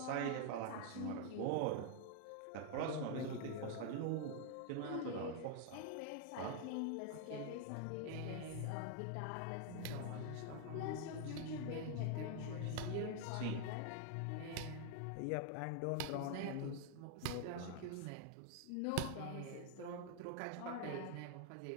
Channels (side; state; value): both; different; correlation 0.00